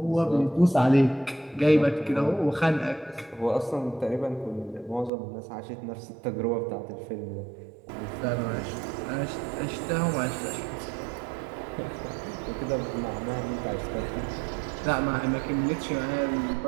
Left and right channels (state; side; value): drops out; left; at 5.1 s